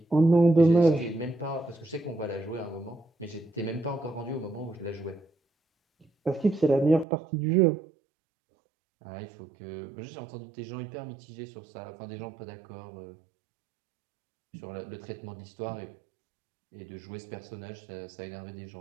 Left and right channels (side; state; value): left; drops out; at 7.1 s